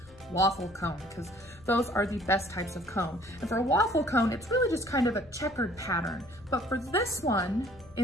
waffle cone, because those are the best types of cone. And for a waffle cone, it's really just kind of a checkered pattern. But for this one,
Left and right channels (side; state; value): left; noise; hum, 24 dB below the sound